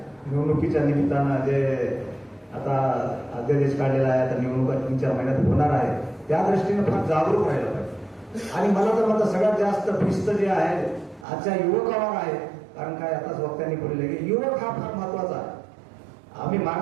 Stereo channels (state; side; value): drops out; left; at 11.2 s